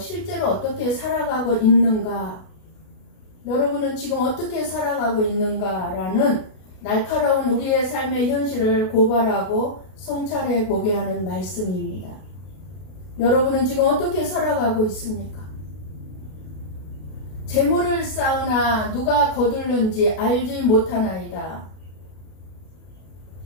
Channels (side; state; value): right; late; 32 ms